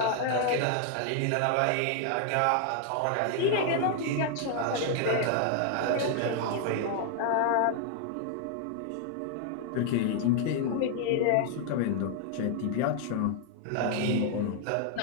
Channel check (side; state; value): both; different; correlation 0.00